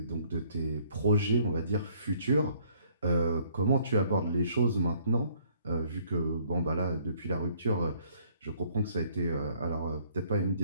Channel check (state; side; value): inverted; both; correlation -0.63